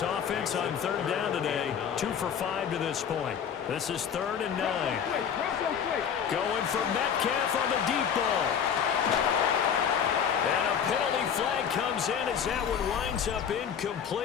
offense on third down today, 2 for 5 to this point. This is third and 9. Going for Metcalf on the deep ball. And a penalty flag comes in as that one winds up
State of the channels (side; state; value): right; quieter; 7.9 dB